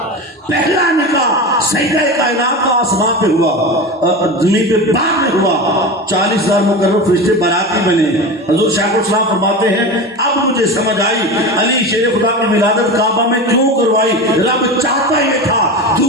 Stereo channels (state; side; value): normal; both; correlation 0.26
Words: پہلا نکاح سیدہ کائنات کا آسمان پہ ہوا زمین پہ باغ میں ہوا 40,000 مقرر فرشتے باراتی بنے حضور شیخ الاسلام فرماتے ہیں اب مجھے سمجھ آئی علی شیر خدا کی ولادت کعبہ میں کیوں کروائی رب چاہتا یہ تھا